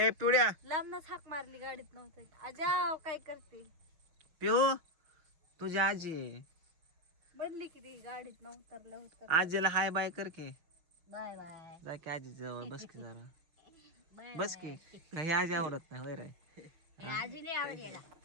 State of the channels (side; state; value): left; late; 6.5 ms